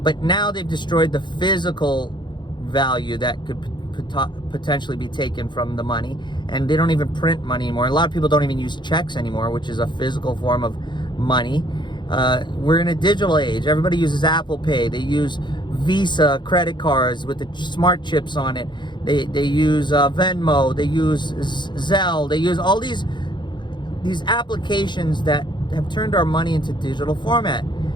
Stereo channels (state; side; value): late; right; 0.22 ms